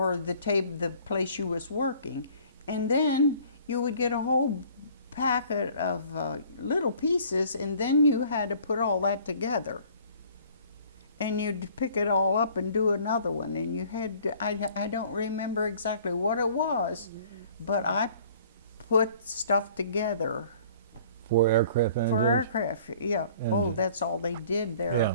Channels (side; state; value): both; inverted; correlation -0.53